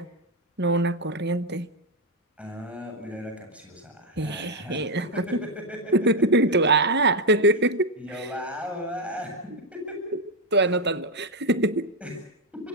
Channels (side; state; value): both; normal; correlation 0.02